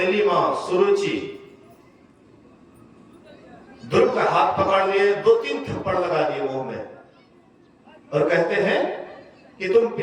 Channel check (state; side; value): identical; both; correlation 1.00